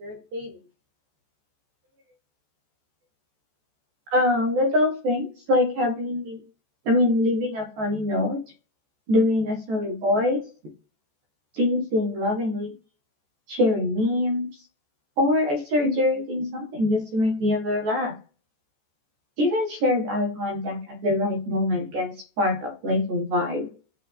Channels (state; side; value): late; left; 14 ms